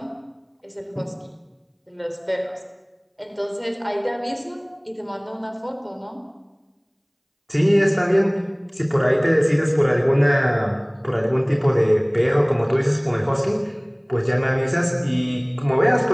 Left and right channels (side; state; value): both; identical; correlation 1.00